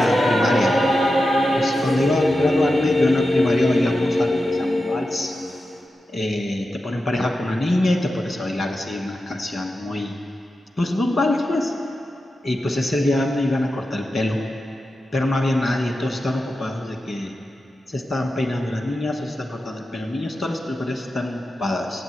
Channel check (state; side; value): normal; both; correlation 0.91